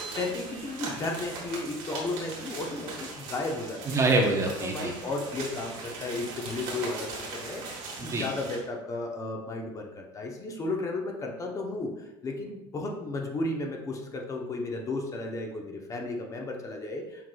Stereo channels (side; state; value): both; normal; correlation 0.46